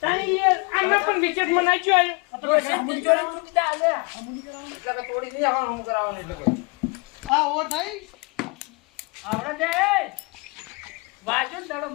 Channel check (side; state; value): right; quieter; 28.9 dB